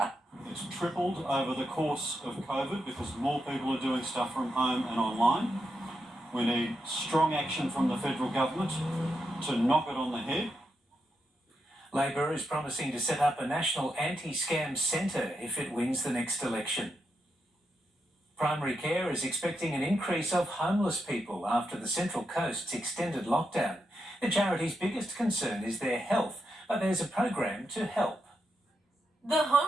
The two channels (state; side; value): normal; both; correlation 0.84